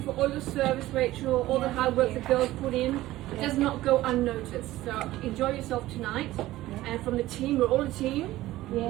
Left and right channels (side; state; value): left; quieter; 16.2 dB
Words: for all your service, Rachel, all the hard work the girls put in. It does not go unnoticed. So enjoy yourself tonight. And from the team, we're all a team. We